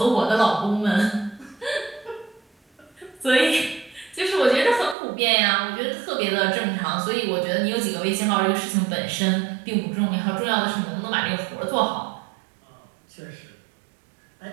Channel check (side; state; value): left; drops out; at 5.0 s